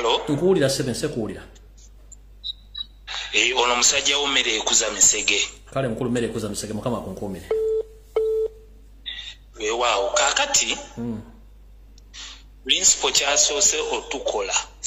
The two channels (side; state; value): both; identical; correlation 1.00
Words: Nkuwulira Sebo sekuwulira. Ono musajja wo mmere ekuza misege. Kale mukulu mmere ekuza misege mukama akunkuumire. Weewaawo kaakati principal kyasoose otukola